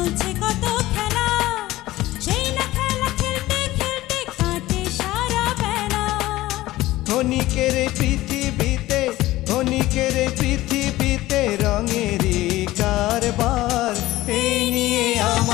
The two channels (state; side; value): quieter; right; 17.0 dB